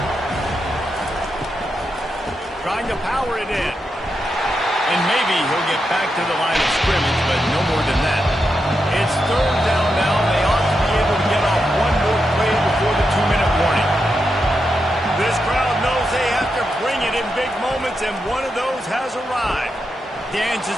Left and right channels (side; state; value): both; normal; correlation 0.86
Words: Trying to power it in. And maybe he'll get back to the line of scrimmage, but no more than that. It's third down now, and they ought to be able to get off one more play before the 2-minute warning. This crowd knows they have to bring it in big moments, and one of those has arrived. Dances